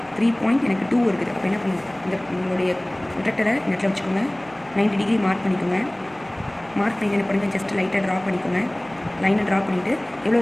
3.2 இருக்குது. அப்போ என்ன பண்ணுவோம், இந்த உங்களுடைய ப்ரொடக்டரை இந்த இடத்துல வச்சுக்கோங்க. 90 டிகிரி மார்க் பண்ணிக்கோங்க. மார்க் பண்ணிட்டு என்ன பண்ணுங்கள், ஜஸ்ட் லைட்டாக ட்ரா பண்ணிக்கோங்க. லைனை ட்ரா பண்ணிவிட்டு எவ்வளோ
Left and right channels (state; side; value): noise; left; hum, 29 dB below the sound